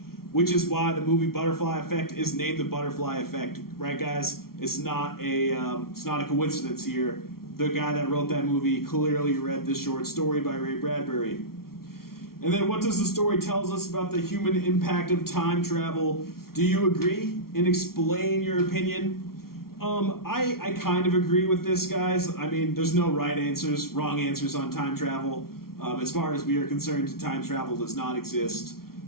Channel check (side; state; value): right; late; 0.93 ms